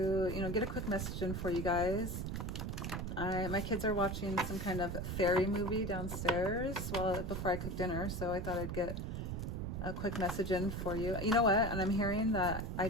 get a quick message in for you guys. My kids are watching some kind of fairy movie downstairs before I cook dinner, so I thought I'd get a quick message in for you. You know what? And I'm hearing that I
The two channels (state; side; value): noise; right; rumble, 3 dB below the sound